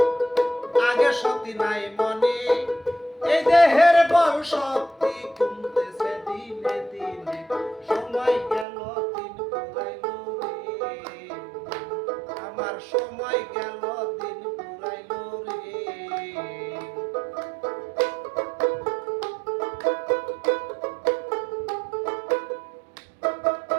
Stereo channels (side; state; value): left; drops out; at 8.7 s